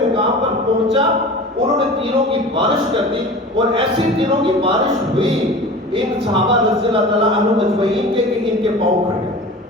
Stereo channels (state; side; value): normal; both; correlation 0.37